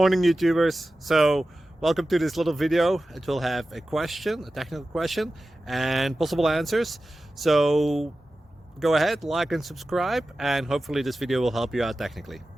YouTubers. So welcome to this little video. It will have a question, a technical question, and possible answers. So go ahead, like and subscribe, and hopefully this video will help you out technically.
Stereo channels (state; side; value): normal; both; correlation 0.94